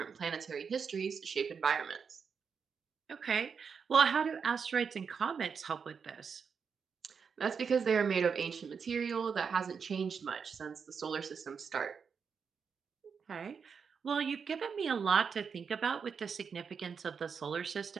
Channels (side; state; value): left; quieter; 6.1 dB